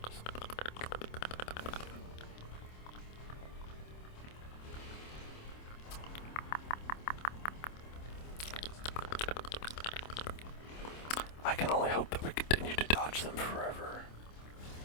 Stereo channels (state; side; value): late; right; 26 ms